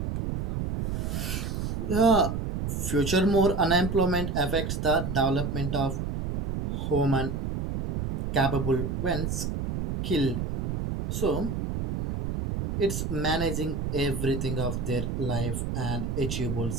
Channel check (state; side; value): noise; right; rumble, 2 dB below the sound